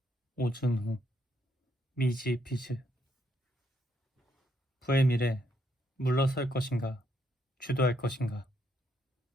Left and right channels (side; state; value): both; normal; correlation 0.74